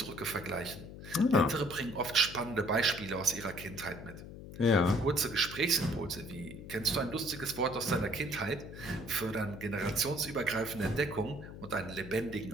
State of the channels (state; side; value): noise; left; hum, 12 dB below the sound